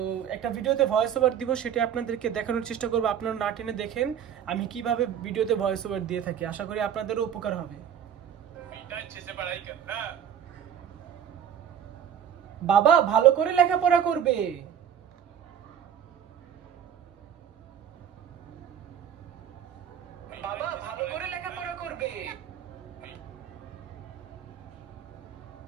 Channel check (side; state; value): left; quieter; 9.0 dB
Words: একটা ভিডিওতে ভয়েস ওভার দিব, সেটা আপনাদেরকে দেখানোর চেষ্টা করবো। আপনারা না টেনে দেখেন আমি কিভাবে ভিডিওতে ভয়েস ওভার দিয়ে থাকি। আশা করি আপনাদেরও উপকার হবে। বাবা ভালো করে লেখাপড়া করবে। বাবা ভালো করে লেখাপড়া করবে।